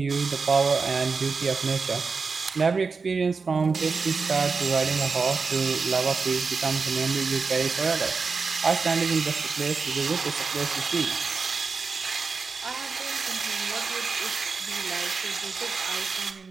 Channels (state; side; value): quieter; left; 4.8 dB